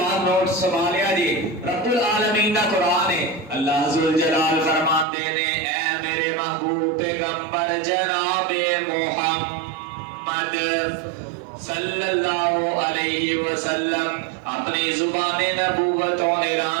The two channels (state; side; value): drops out; left; at 5.1 s